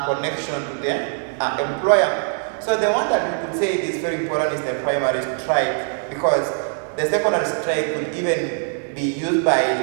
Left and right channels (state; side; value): silent; left; 64 dB below the other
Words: connection to the employer. So the one that we could say is very important is the primary strike, because the secondary strike could even be used by